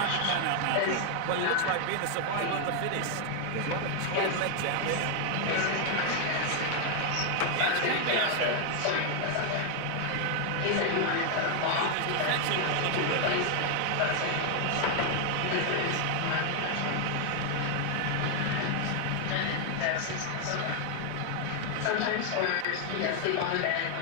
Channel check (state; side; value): different; both; correlation 0.00